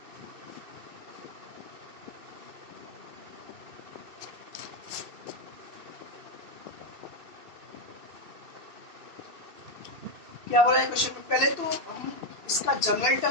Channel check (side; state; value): left; late; 2.6 ms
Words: क्या हो रहा है क्वेश्चन में? पहले तो हम इसका जनरल